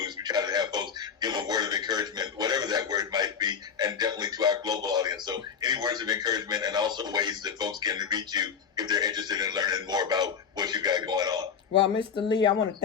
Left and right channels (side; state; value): right; quieter; 6.8 dB